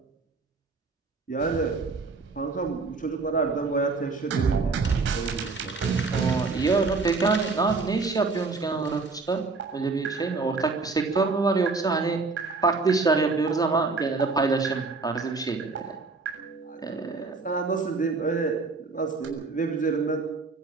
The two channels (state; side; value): quieter; left; 4.1 dB